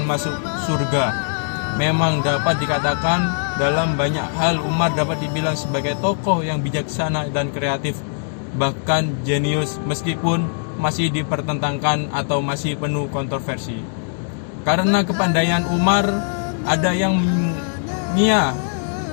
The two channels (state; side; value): silent; right; digital silence